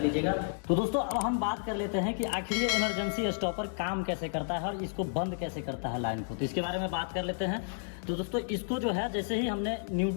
लीजिएगा। तो दोस्तों अब हम बात कर लेते हैं कि आखिर ये इमरजेंसी स्टॉपर काम कैसे करता है और इसको बंद कैसे करता है लाइन को। तो इसके बारे में बात कर लेते हैं। तो दोस्तों इसको जो है, जैसे ही हमने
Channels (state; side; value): silent; right; digital silence